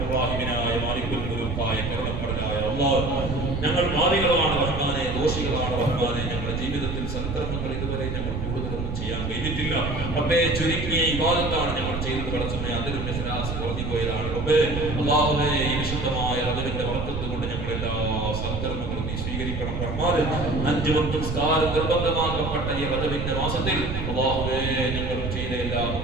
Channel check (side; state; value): right; noise; rumble, 4 dB below the sound